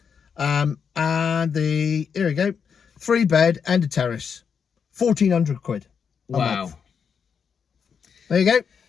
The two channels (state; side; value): quieter; right; 6.7 dB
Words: And here we go, 3-bed and a terrace, 1,400 quid. Wow. There you go.